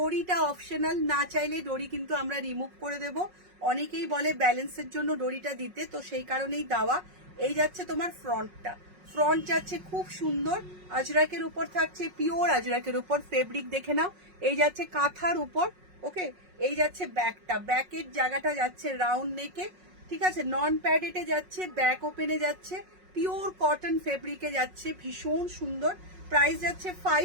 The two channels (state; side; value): late; left; 5.4 ms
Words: অপশনাল, না চাইলে ডোরি কিন্তু আমরা রিমুভ করে দেব। অনেকেই বলে ব্যালেন্সের জন্য ডোরিটা দিতে, তো সেই কারণেই দেওয়া। এই যাচ্ছে তোমার ফ্রন্টটা, ফ্রন্ট যাচ্ছে খুব সুন্দর আজরাকের উপর থাকছে, পিওর আজরাকের উপর ফেব্রিক দেখে নাও। এই যাচ্ছে কাঁথার উপর, ওকে। এই যাচ্ছে ব্যাকটা, ব্যাকের জায়গাটা যাচ্ছে রাউন্ড নেকে, ঠিক আছে, নন প্যাডেটে যাচ্ছে, ব্যাক ওপেনে যাচ্ছে, পিওর কটন ফেব্রিকে যাচ্ছে, ভীষণ সুন্দর। প্রাইস যাচ্ছে